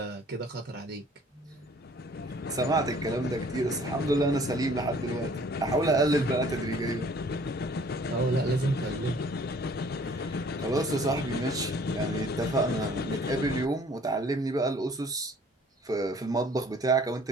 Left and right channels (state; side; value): normal; both; correlation 0.55